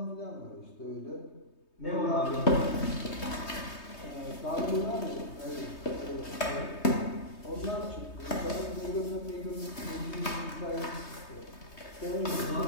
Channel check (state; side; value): late; right; 3.2 ms